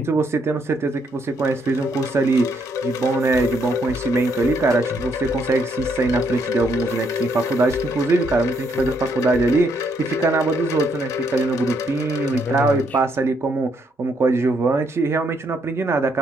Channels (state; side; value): normal; both; correlation 0.73